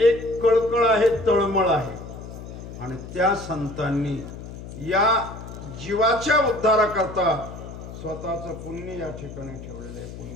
एक कळकळ आहे, तळमळ आहे आणि त्या संतांनी या जीवाच्या उद्धाराकरता स्वतःचं पुण्य या ठिकाणी ठेवलेलं आहे,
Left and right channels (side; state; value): left; noise; hum, 12 dB below the sound